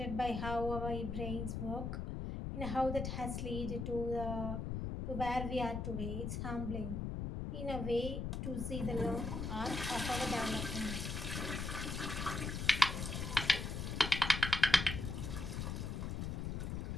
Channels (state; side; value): noise; left; rumble, 3 dB below the sound